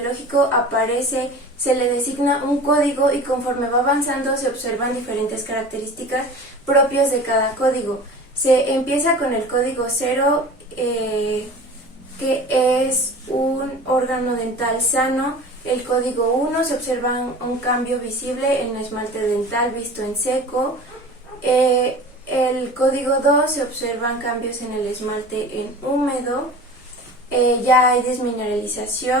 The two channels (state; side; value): normal; both; correlation 0.38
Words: aparece, se le designa un código y conforme va avanzando se observan diferentes características propias de cada código. Se empieza con el código 0, que es un órgano dental sano. El código 1, se observa un cambio visible en el esmalte dental visto en seco. El código 2, se observan cambios en el esmalte en húmedo. Ya hay